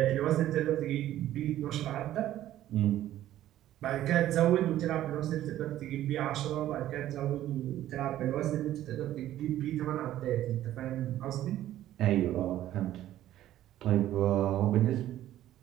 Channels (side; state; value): left; quieter; 13.2 dB